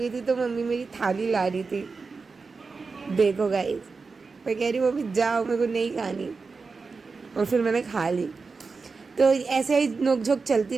थी, तो मम्मी मेरी थाली ला रही थी। देखो गाइस, मैं कह रही हूँ मम्मी जाओ, मेरे को नहीं खानी, और फिर मैंने खा ली। तो ऐसे ही नोकझोंक चलती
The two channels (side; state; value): left; quieter; 4.5 dB